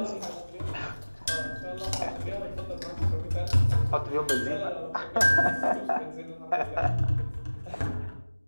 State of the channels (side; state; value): both; inverted; correlation -1.00